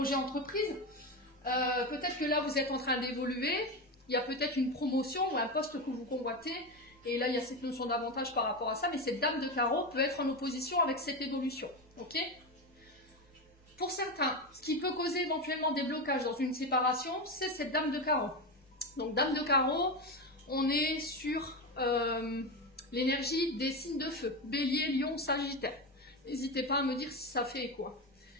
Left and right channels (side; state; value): both; normal; correlation 0.17